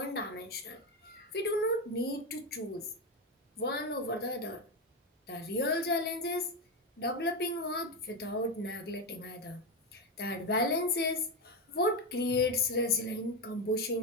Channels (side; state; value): both; normal; correlation 0.11